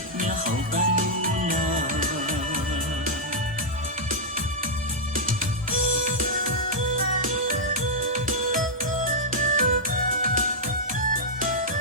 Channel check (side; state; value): both; normal; correlation -0.07